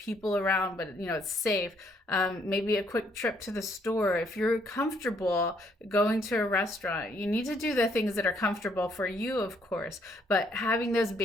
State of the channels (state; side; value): normal; both; correlation 0.68